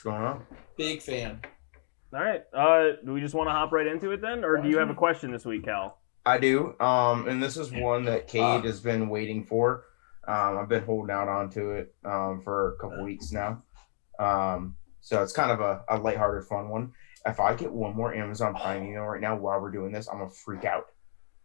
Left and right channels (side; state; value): right; silent; digital silence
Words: going on? Big fan. All right. Do we just want to hop right into it then, or do you have a question this week, Cal? I do. And this is one that Cade has been waiting for. I've been holding out onto it for a couple weeks now. So it's kind of a lighthearted, fun one. If I get one more Amazon Prime email right now while we're doing this, I'm gonna freak out.